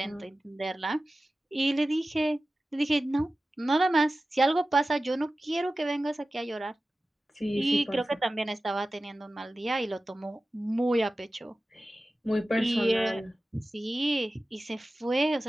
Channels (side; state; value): both; normal; correlation 0.95